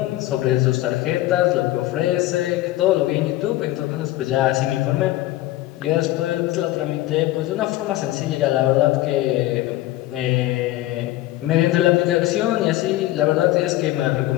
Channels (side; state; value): right; quieter; 16.1 dB